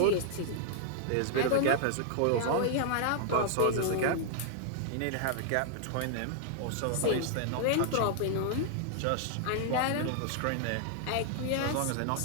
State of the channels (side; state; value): both; different; correlation -0.01